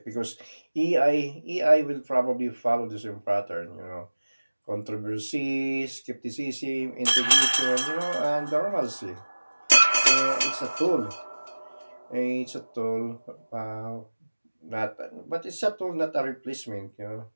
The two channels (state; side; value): inverted; both; correlation -1.00